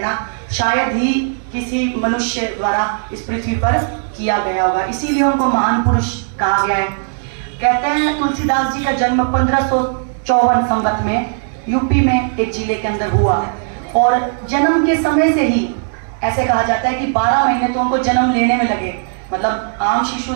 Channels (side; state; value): left; silent; 66 dB below the other